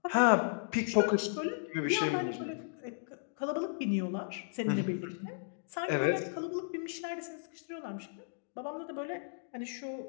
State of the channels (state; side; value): silent; right; digital silence